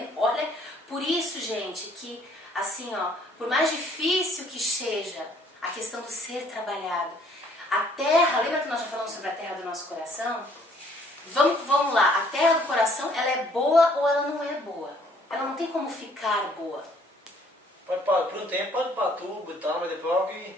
Olha, por isso, gente, que assim, ó, por mais difícil que seja a questão do ser trabalhado, a terra, lembra que nós já falamos sobre a terra do nosso coração? Vamos lá, a terra do coração, ela é boa ou ela não é boa? Ela não tem como ficar boa. Pode para por um tempo, pode para tubo e tal, mas depois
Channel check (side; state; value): both; normal; correlation 0.61